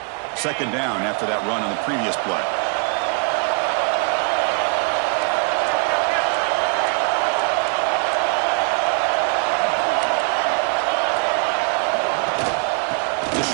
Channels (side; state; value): left; quieter; 37.0 dB